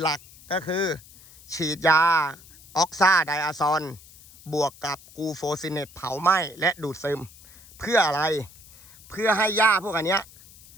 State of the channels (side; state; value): left; noise; hiss, 22 dB below the sound